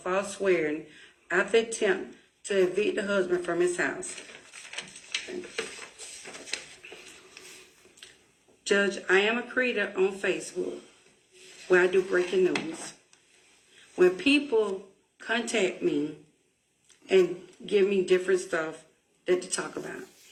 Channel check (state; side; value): identical; both; correlation 1.00